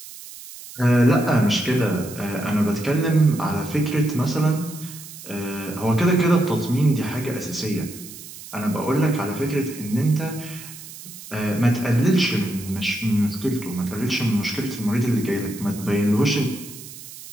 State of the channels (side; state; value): right; noise; hiss, 15 dB below the sound